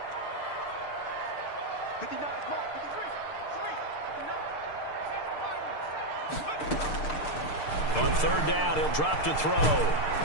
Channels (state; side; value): late; right; 6.7 ms